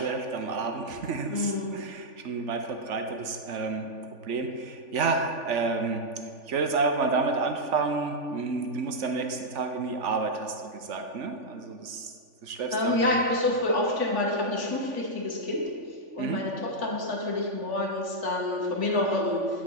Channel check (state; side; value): late; left; 3.5 ms